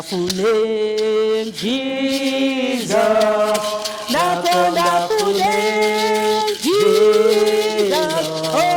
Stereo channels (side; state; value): both; identical; correlation 1.00